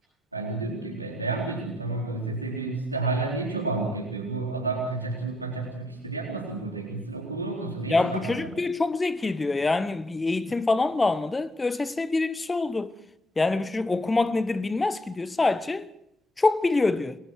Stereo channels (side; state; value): both; normal; correlation 0.72